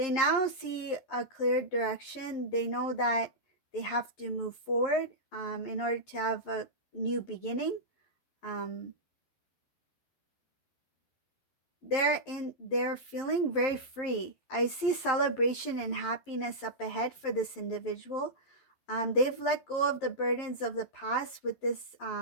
now see a clear direction. They know that they have to move forward in order to have a new beginning. They're feeling very free. I see celebration and happiness up ahead for this individual. They've let go of the burdens of the past with this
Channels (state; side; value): late; right; 11 ms